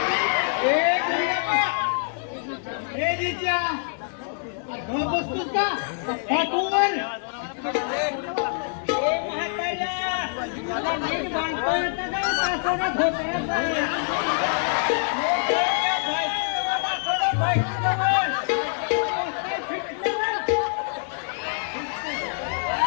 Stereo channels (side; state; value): right; silent; digital silence